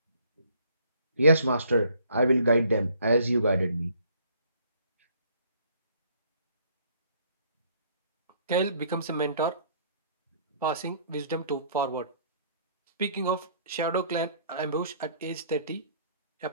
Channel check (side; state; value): both; inverted; correlation -0.61